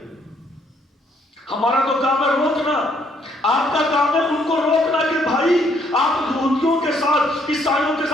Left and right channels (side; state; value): both; normal; correlation 0.69